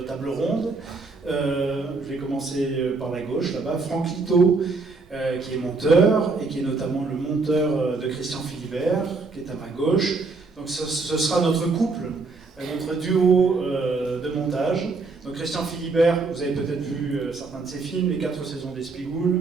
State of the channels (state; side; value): quieter; left; 3.9 dB